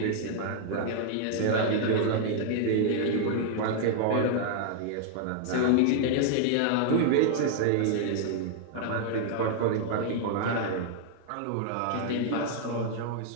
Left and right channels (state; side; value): different; both; correlation 0.00